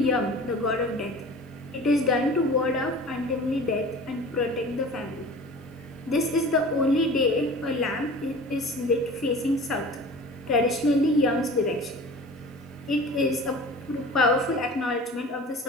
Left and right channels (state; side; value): normal; both; correlation 0.40